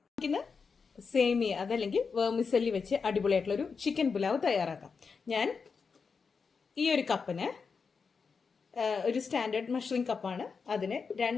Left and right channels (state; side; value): quieter; right; 5.3 dB